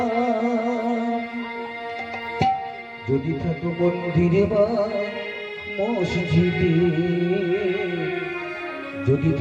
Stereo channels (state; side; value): identical; both; correlation 1.00